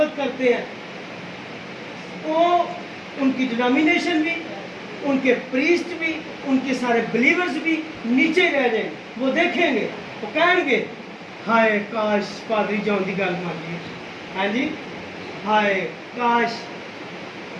کرتے ہیں، وہ ان کی ڈینامینیشن بھی، ان کے پریسٹ بھی، ان کے سارے بلیورز بھی نیچے رہ جائیں گے۔ وہ دیکھیں گے، وہ کہیں گے ہائے کاش پادری جان دی گل مان لی، ہاں جی، ہائے کاش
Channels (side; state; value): both; identical; correlation 1.00